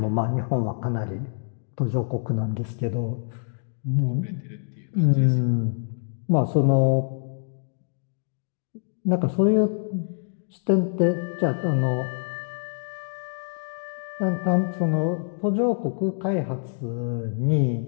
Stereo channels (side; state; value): right; silent; digital silence